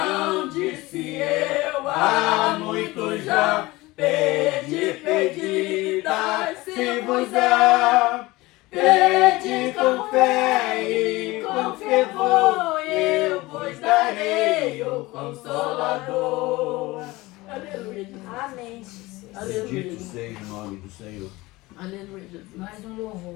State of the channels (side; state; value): right; quieter; 20.6 dB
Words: disse eu há muito já, pedi, pedi, dai-se-vos-á. Pedi com fé e com fervor, eu vos darei o Consolador. Aleluia, Jesus. Amém, Jesus. Aleluia, Bendito Jesus. seja o nome do Senhor. Aleluia, Jesus. Mais um